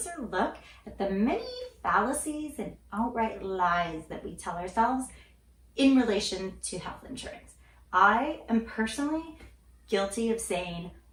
look at the many fallacies and outright lies that we tell ourselves in relation to health insurance. I am personally guilty of saying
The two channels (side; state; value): both; identical; correlation 1.00